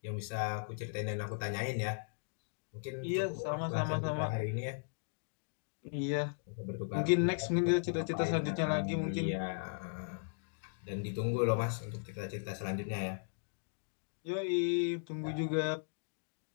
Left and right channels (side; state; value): right; silent; digital silence